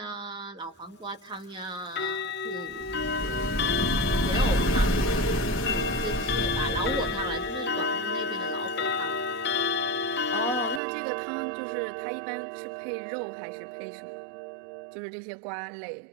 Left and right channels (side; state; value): left; drops out; at 10.8 s